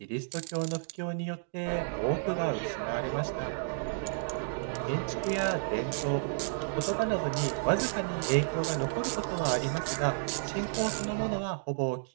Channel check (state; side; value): silent; left; digital silence